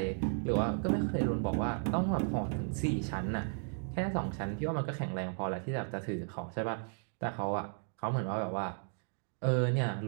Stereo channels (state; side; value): silent; left; 55 dB below the other